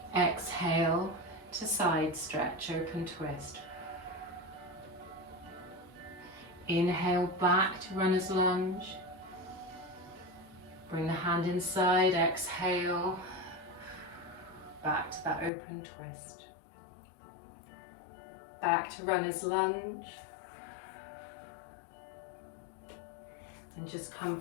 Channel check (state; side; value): drops out; right; at 15.5 s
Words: Exhale to side stretch, open twist. Inhale back to runner's lunge. Bring the hand inside, exhale. Back to that open twist. Back to runner's lunge. And just come